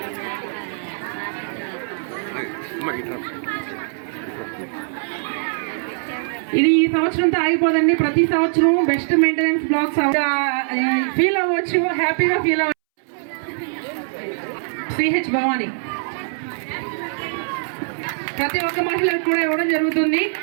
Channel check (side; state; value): left; silent; 64 dB below the other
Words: ఇది ఈ సంవత్సరంతో ఆగిపోదండి. ప్రతి సంవత్సరం బెస్ట్ మెయింటెనెన్స్ బ్లాక్స్ ఫీల్ అవ్వచ్చు, హ్యాపీగా ఫీల్ అవ్వచ్చు. సిహెచ్ భవాని ప్రతి ఒక్క మహిళకు కూడా ఇవ్వడం జరుగుతుంది.